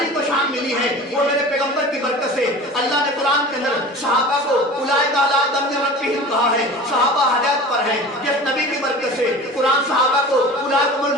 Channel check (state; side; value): normal; both; correlation 0.37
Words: को शान मिली है। वो मेरे पैगंबर की बरकत से अल्लाह ने कुरान के अंदर सहाबा को उलाइका अला दम रब्बिहिम कहा है, सहाबा हिदायत पर हैं। जिस नबी की बरकत से कुरान सहाबा को उलाइकुमुल